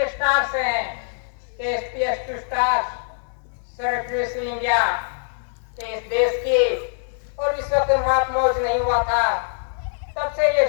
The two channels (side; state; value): right; silent; 63 dB below the other